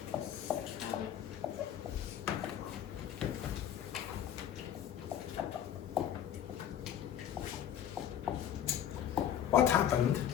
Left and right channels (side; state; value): right; quieter; 10.0 dB